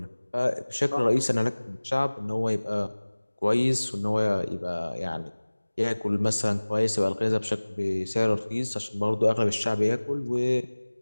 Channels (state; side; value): inverted; both; correlation -1.00